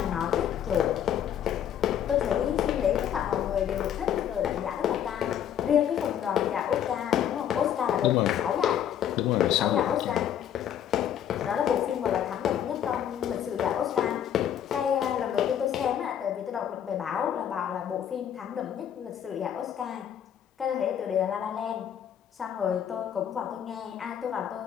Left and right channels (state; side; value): quieter; right; 9.7 dB